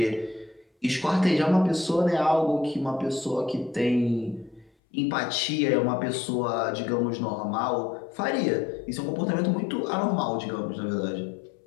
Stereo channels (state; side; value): drops out; right; at 4.7 s